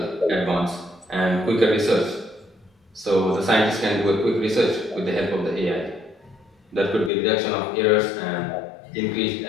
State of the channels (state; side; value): drops out; right; at 7.1 s